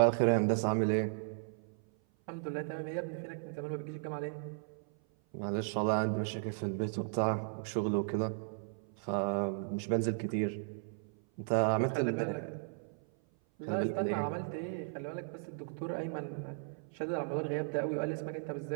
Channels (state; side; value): silent; left; 54 dB below the other